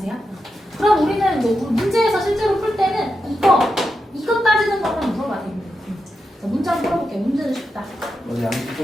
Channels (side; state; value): both; normal; correlation 0.88